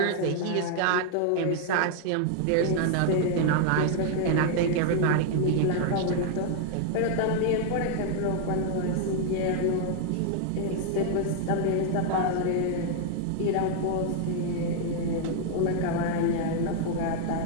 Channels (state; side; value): different; both; correlation 0.00